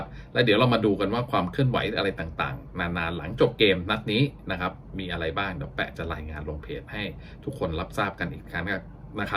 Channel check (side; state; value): both; identical; correlation 1.00